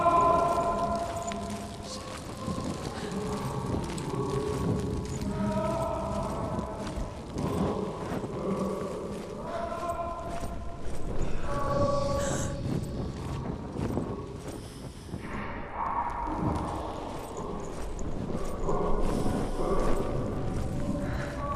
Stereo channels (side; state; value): both; identical; correlation 1.00